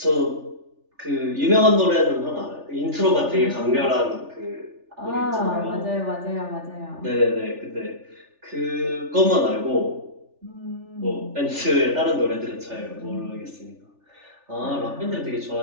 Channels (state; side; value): late; left; 3.4 ms